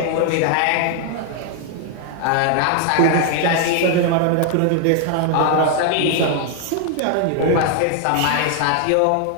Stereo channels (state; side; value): different; both; correlation 0.00